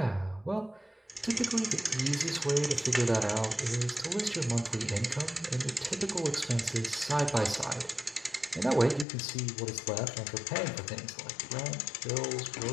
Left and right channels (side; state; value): right; drops out; at 9.1 s